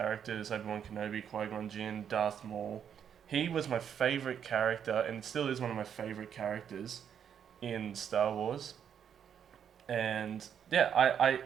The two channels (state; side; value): quieter; left; 8.4 dB